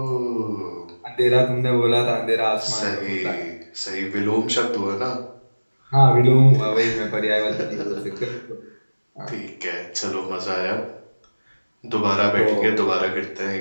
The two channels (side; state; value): both; inverted; correlation -1.00